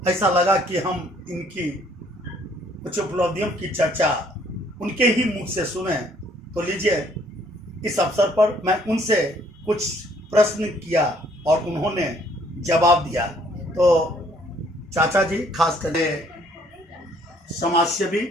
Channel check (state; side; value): normal; both; correlation 0.63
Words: ऐसा लगा कि हम इनकी कुछ उपलब्धियों की चर्चा उनके ही मुख से सुने। तो लीजिए, इस अवसर पर मैं उनसे कुछ प्रश्न किया और उन्होंने जवाब दिया। तो चाचा जी खास करके समाजसेवी